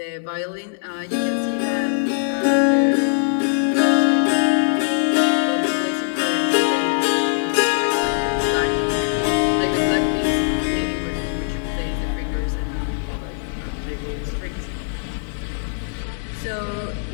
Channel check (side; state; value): right; silent; 61 dB below the other